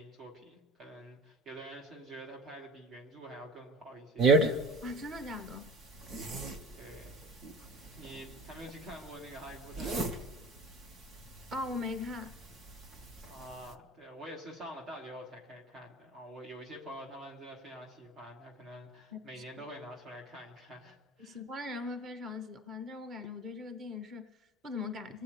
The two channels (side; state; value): both; normal; correlation 0.39